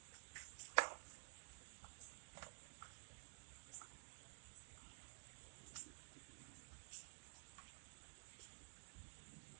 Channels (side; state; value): left; silent; digital silence